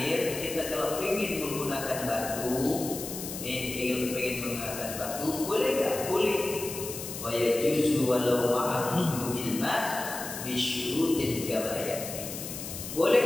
kita kalau ingin menggunakan batu, ingin menggunakan batu, boleh tak? Boleh. Wa yajuzu walau ma'a wujudil ma' bi syurutin kama yati.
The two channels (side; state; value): left; noise; hiss, 8 dB below the sound